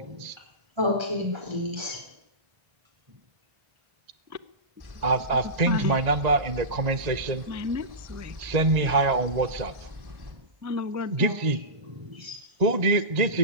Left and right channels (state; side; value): late; left; 1.9 ms